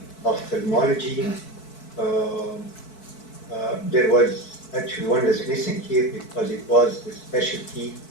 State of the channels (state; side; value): late; right; 4.6 ms